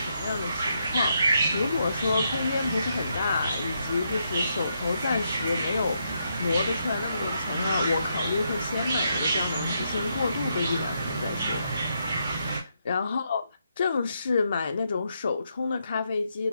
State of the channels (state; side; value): inverted; both; correlation -0.79